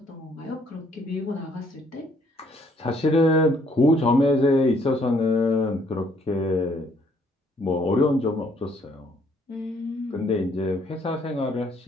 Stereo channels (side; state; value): both; normal; correlation 0.66